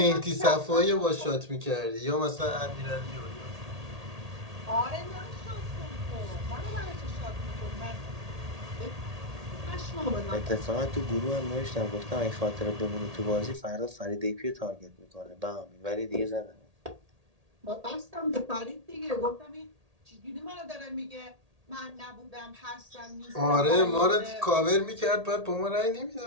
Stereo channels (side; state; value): left; late; 1.8 ms